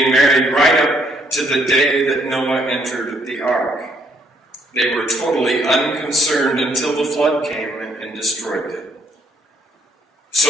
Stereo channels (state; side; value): normal; both; correlation 0.69